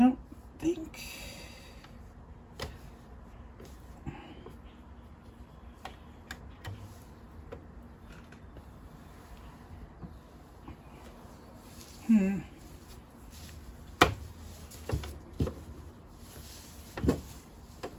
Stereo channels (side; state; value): both; identical; correlation 1.00